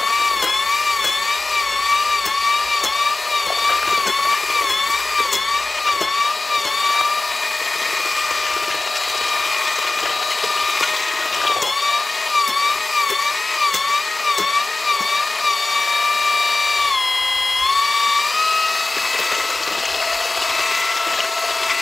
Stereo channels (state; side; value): quieter; right; 3.1 dB